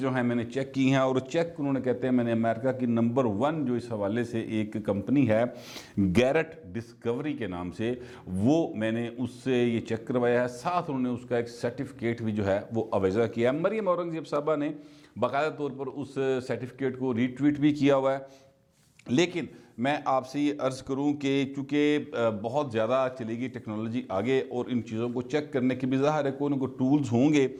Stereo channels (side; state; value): both; identical; correlation 1.00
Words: ہیں میں نے چیک کی ہیں, اور چیک انہوں نے کہتے ہیں میں نے امریکہ کی نمبر 1 جو اس حوالے سے ایک کمپنی ہے گیرٹ ڈسکوری کے نام سے, وہ میں نے اس سے یہ چیک کروایا ہے. ساتھ انہوں نے اس کا ایک سرٹیفکیٹ بھی جو ہے وہ اویزہ کیا ہے. مریم اورنگزیب صاحبہ نے باقاعدہ طور پر اس سرٹیفکیٹ کو ری ٹویٹ بھی کیا ہوا ہے. لیکن میں آپ سے یہ عرض کروں کہ چونکہ بہت زیادہ چلے گی ٹیکنالوجی آگے, اور ان چیزوں کو چیک کرنے کے بھی ظاہر ہے کوئی نہ کوئی ٹولز ہوں گے.